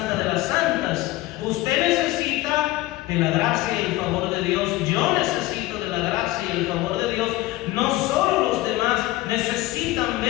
de las santas. Usted necesita de la gracia y el favor de Dios. Yo necesito de la gracia y el favor de Dios. No solo los demás necesitan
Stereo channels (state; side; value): quieter; right; 18.0 dB